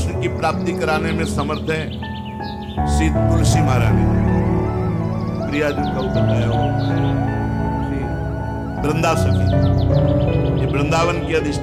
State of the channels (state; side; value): identical; both; correlation 1.00